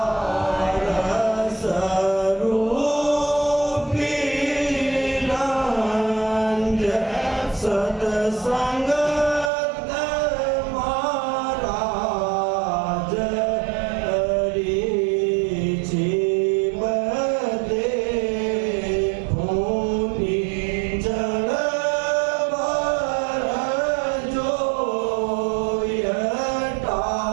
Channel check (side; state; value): left; drops out; at 9.5 s